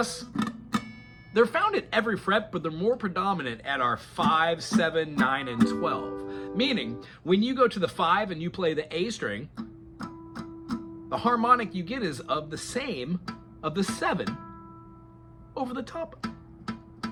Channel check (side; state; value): both; identical; correlation 1.00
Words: they're found at every fret, but they're more predominant at our 5, 7, 9, and 12. Meaning, when you go to the 5 and you play the A string, the harmonic you get is of the same of the 7 over the top.